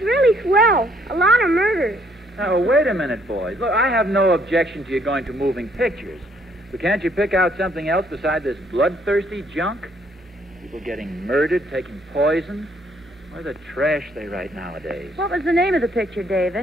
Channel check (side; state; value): both; normal; correlation 0.67